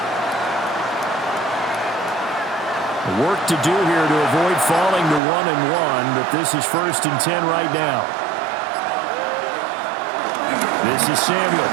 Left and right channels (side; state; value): left; drops out; at 5.2 s